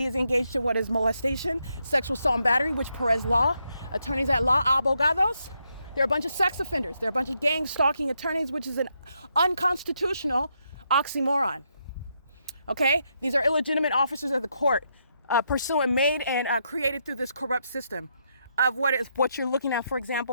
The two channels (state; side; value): inverted; both; correlation -0.79